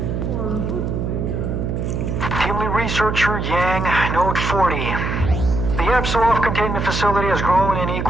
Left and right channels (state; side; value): noise; right; hum, 2 dB below the sound